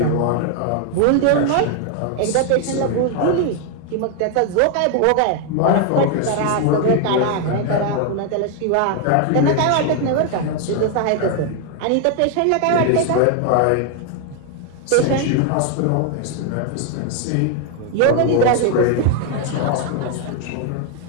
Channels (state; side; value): different; both; correlation 0.00